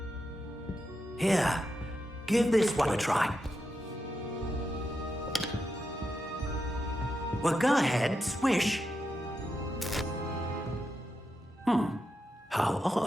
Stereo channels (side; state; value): both; normal; correlation 0.86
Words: Here, give this one a try. Well, go ahead, swish. How